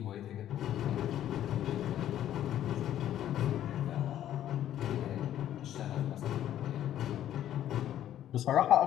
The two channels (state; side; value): quieter; right; 11.6 dB